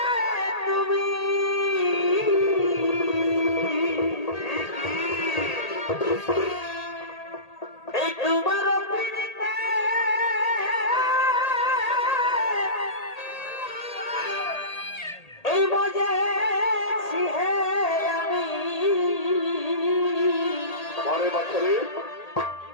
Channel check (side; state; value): right; late; 1.8 ms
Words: তুমি, এই তোমার পিড়িতে এই মজেছি হে আমি মারে বাচ্চারে